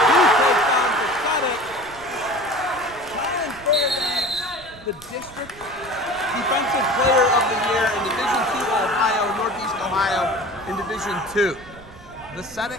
2 touchdowns for Vucetic. Collin Fairbanks, the district defensive player of the year in Division II Ohio, Northeast Ohio, in Division II.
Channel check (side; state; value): right; noise; rumble, 20 dB below the sound